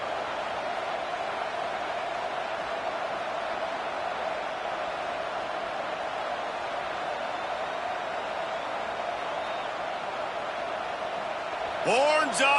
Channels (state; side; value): identical; both; correlation 1.00